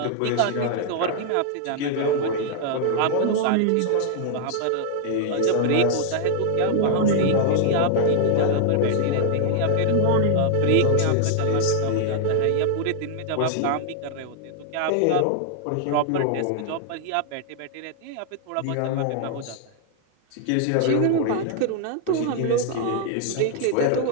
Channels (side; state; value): both; different; correlation 0.00